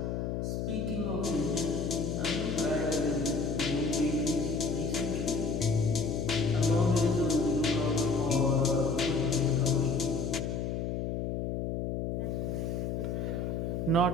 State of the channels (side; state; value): left; noise; hum, 2 dB below the sound